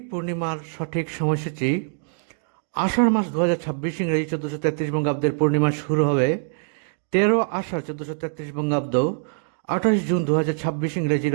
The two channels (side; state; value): left; silent; digital silence